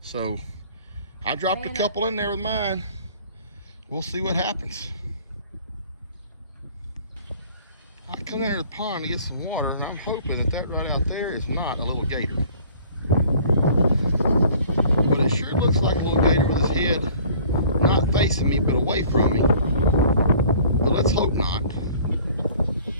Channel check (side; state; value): both; inverted; correlation -0.51